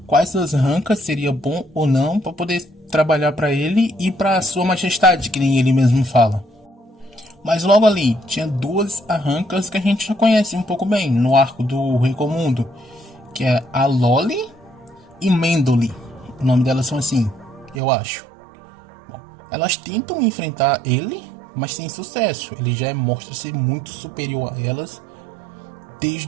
quais das arrancas seria bom ou não para poder trabalhar para ele e para sua majestade, que nem ele mesmo fala. Mas logo ali tinha duas arrancas que a gente já conhece um pouco bem no arco do Recomundo, que é a Loli e Mendoli. O nome delas são assim, eu acho. Bom, elas tentam enfrentar ele, mas sem sucesso. Ele já mostra ser muito superior a elas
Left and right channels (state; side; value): drops out; left; at 17.8 s